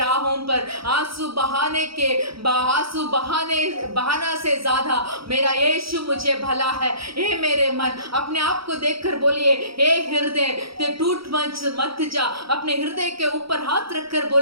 पर आंसू बहाना से ज्यादा मेरा यीशु मुझे भला है। हे मेरे मन, अपने आप को देखकर बोलिए, हे हृदय तू टूट मत जा। अपने हृदय के ऊपर हाथ रखकर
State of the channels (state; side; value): late; left; 0.75 ms